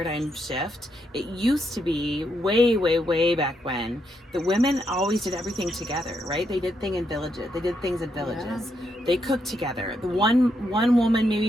shift. It used to be way back when the women always did everything together, right? They did things in villages. Yeah. They cooked together. The one woman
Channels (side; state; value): both; normal; correlation 0.79